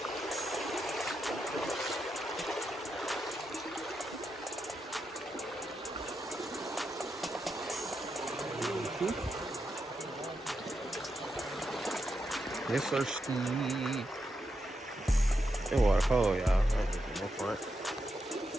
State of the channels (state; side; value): normal; both; correlation 0.85